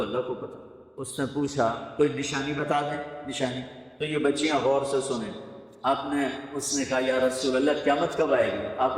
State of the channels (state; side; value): identical; both; correlation 1.00